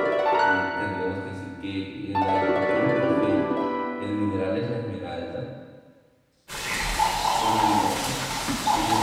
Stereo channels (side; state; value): both; identical; correlation 1.00